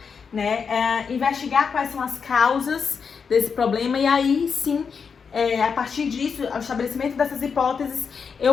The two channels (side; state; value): right; quieter; 6.0 dB